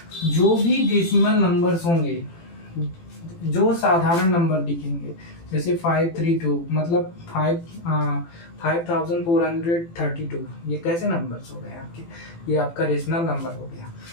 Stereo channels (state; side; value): late; right; 18 ms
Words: जो भी डेसिमल नंबर्स होंगे, जो साधारण नंबर दिखेंगे, जैसे 532 मतलब 5432, ये कैसे नंबर्स हो गए आपके? ये आपका रेशनल नंबर हो गया।